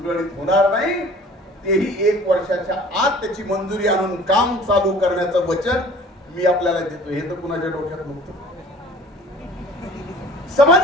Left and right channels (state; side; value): normal; both; correlation 0.48